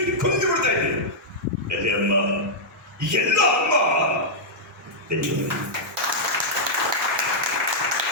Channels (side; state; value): both; normal; correlation -0.08